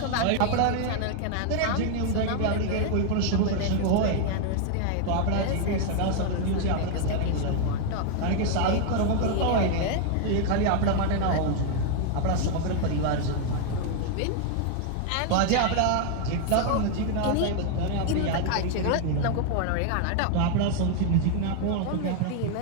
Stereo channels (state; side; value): different; both; correlation 0.00